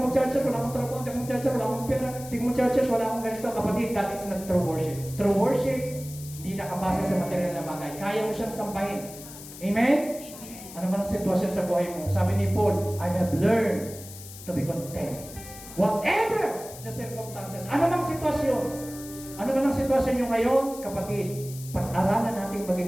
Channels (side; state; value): left; noise; hiss, 15 dB below the sound